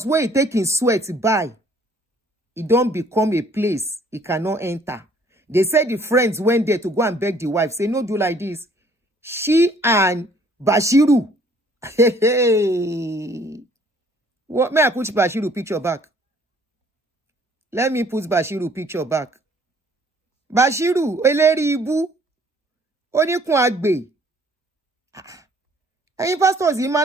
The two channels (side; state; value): both; normal; correlation 0.59